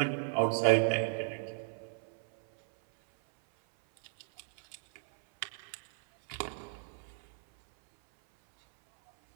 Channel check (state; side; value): silent; left; 55 dB below the other